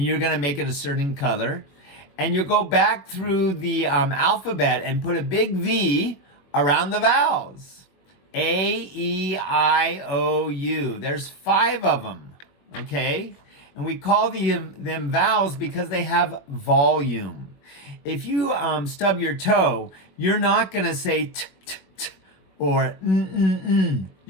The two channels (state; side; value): late; right; 21 ms